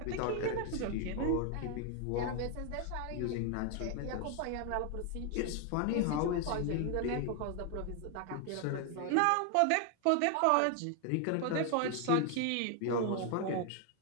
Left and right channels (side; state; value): both; different; correlation 0.00